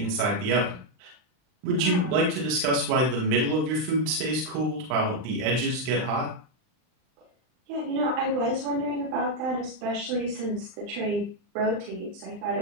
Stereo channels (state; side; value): late; left; 39 ms